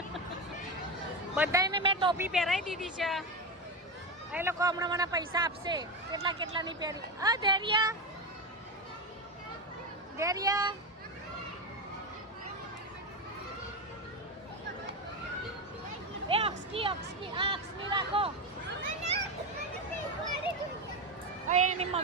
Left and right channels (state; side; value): normal; both; correlation 0.15